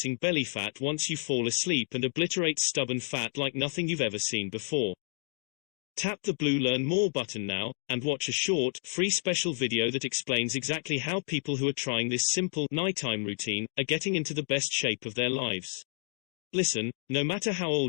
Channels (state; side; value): silent; right; 58 dB below the other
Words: belly fat once you fall asleep and obliterates stubborn fat like nothing you've ever seen before. Tap the blue Learn More button now, and watch a short, free special video that explains exactly how people who are trying this simple, nighttime routine are getting into the best shape of their lives. Listen, no matter how